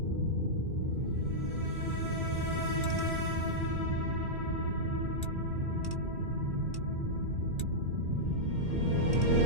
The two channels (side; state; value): left; late; 2.3 ms